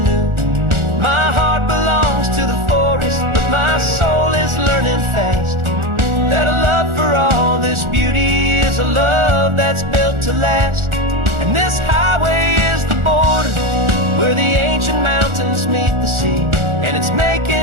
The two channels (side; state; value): left; late; 1.4 ms